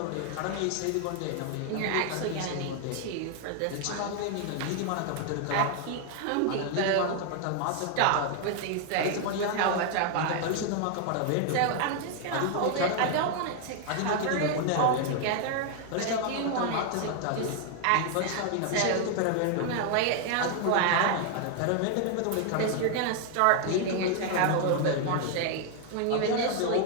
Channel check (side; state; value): both; different; correlation 0.00